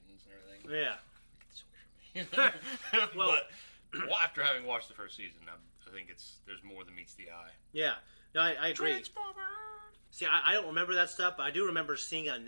and everything. Yeah. Get this away from me. But after having watched the first season, I think there's more than meets the eye. Yeah. No, I agree. Transformers! See, I don't remember that stuff, but I do remember seeing on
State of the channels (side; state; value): both; inverted; correlation -1.00